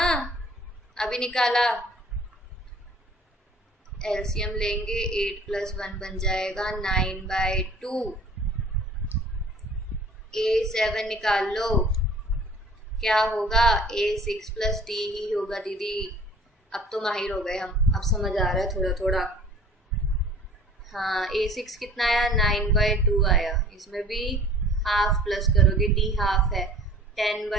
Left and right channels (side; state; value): both; normal; correlation 0.49